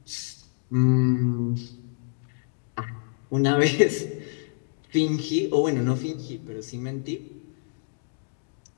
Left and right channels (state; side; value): silent; right; digital silence